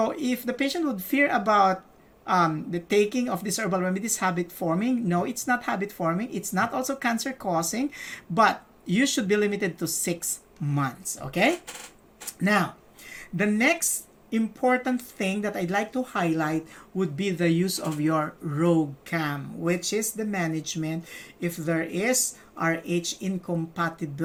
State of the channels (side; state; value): both; identical; correlation 1.00